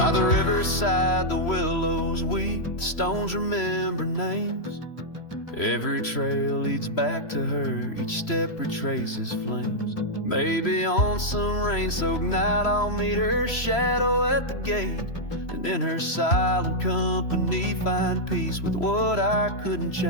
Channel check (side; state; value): right; late; 3.0 ms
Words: the riverside, the willows weep, the stones remember names. Every trail leads back to her, each step retraces flames. Maybe on some rain-soaked night I'll meet her shadow at the gate, and in her silent company find peace with what I couldn't